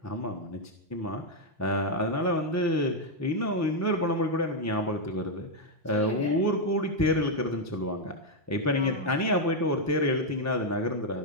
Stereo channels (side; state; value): both; normal; correlation 0.00